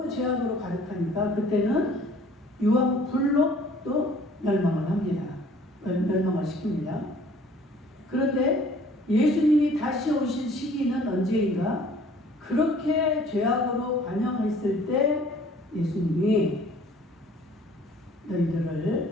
죄악으로 가득하니까 그때는 유황 불로 또 멸망을 합니다. 멸망을 시킵니다. 그런데 예수님이 다시 오실 시기는 언제인가? 그렇게 죄악으로 관영했을 때 예수님이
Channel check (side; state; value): both; normal; correlation 0.54